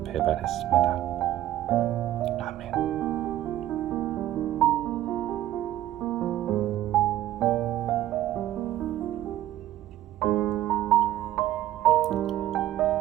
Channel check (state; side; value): quieter; left; 13.6 dB